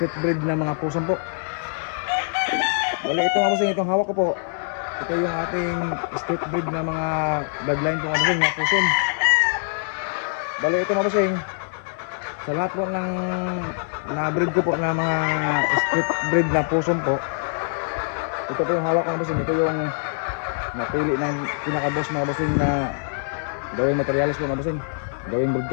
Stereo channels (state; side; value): silent; right; digital silence